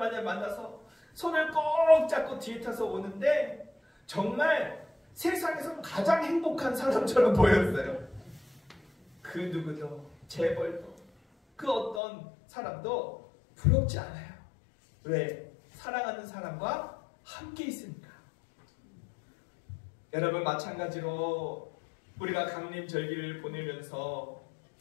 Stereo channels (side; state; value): right; drops out; at 12.0 s